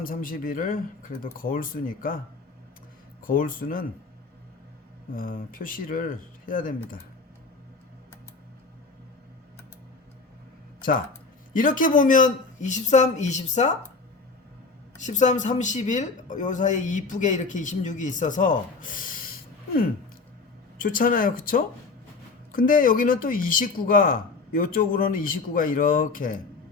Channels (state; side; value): quieter; right; 4.2 dB